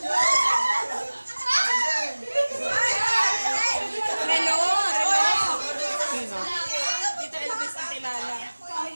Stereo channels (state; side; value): inverted; both; correlation -1.00